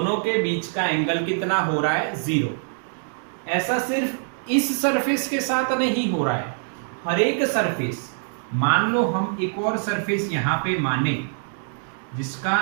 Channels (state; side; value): silent; left; digital silence